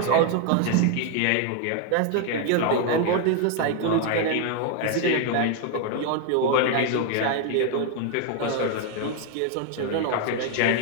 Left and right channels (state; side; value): different; both; correlation 0.01